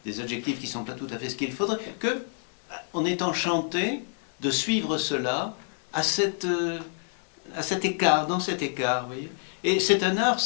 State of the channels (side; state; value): right; silent; 60 dB below the other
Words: des adjectifs qui ne sont pas tout à fait ce qu'il faudrait, qu'on est enchanté de suivre cela à cet écart, dans cet écart, vous voyez. Et c'est un art,